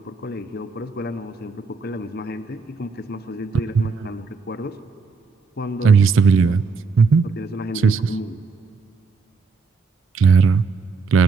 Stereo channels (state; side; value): quieter; left; 4.7 dB